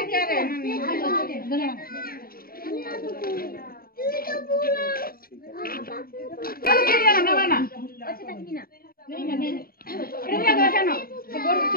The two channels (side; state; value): right; late; 0.43 ms